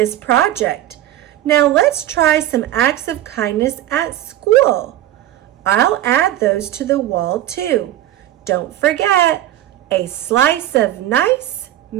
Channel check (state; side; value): quieter; left; 13.2 dB